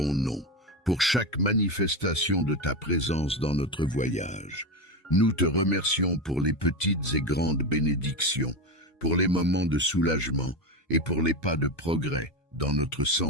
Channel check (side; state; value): both; normal; correlation 0.16